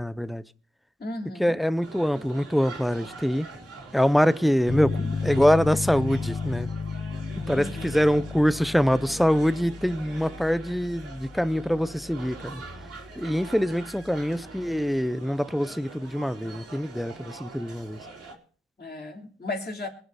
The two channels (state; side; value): normal; both; correlation 0.97